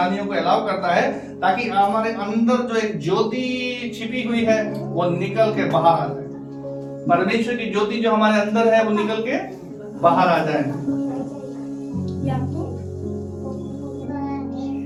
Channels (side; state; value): both; identical; correlation 1.00